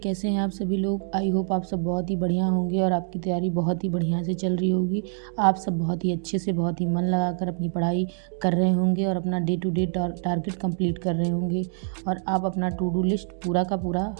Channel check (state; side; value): silent; left; digital silence